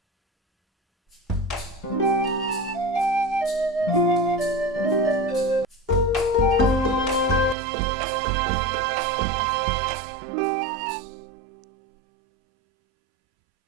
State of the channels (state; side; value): drops out; left; at 7.6 s